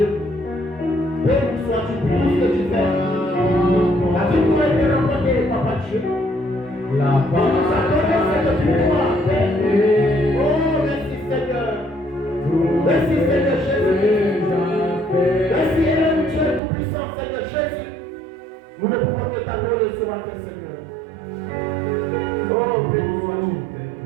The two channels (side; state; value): left; drops out; at 16.6 s